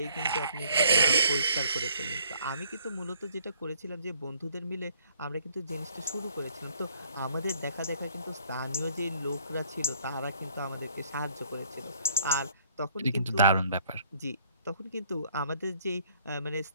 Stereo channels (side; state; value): both; inverted; correlation -0.62